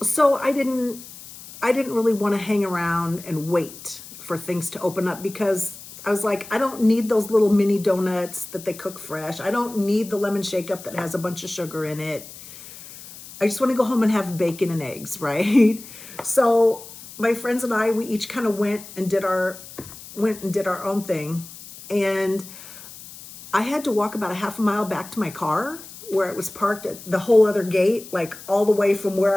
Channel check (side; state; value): left; noise; hiss, 16 dB below the sound